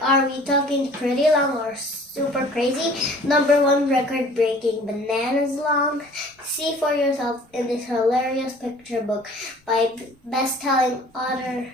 are we talking pretty long or super crazy? #1 record-breaking bananas long? See for yourself in this hilarious picture book by best-selling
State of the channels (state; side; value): normal; both; correlation 0.50